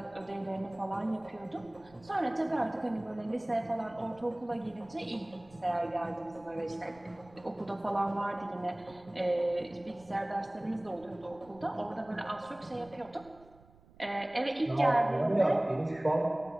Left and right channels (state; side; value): noise; right; rumble, 25 dB below the sound